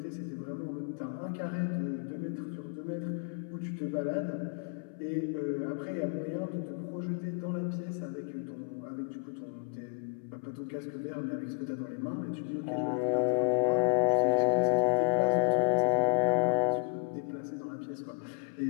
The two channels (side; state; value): right; silent; 56 dB below the other